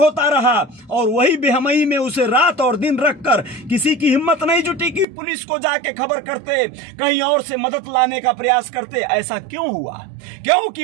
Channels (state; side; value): drops out; left; at 5.1 s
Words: रहा और वही बेहमई में उसे रात और दिन रखकर किसी की हिम्मत नहीं जुटी कि पुलिस को जाके खबर करते, कहीं और से मदद लाने का प्रयास करते। ऐसा क्यों हुआ?